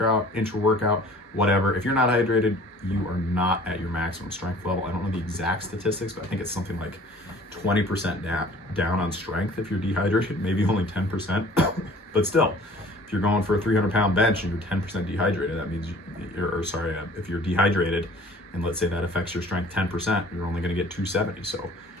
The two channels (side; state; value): both; normal; correlation 0.50